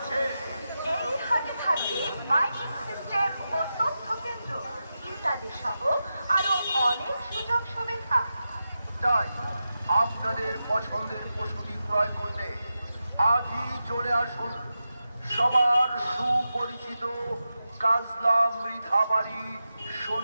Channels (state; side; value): inverted; both; correlation -0.90